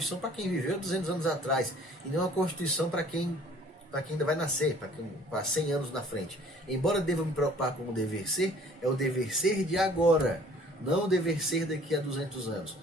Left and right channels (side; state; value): both; normal; correlation 0.54